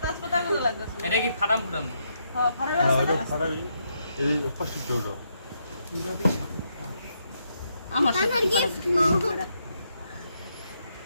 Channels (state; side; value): inverted; both; correlation -0.78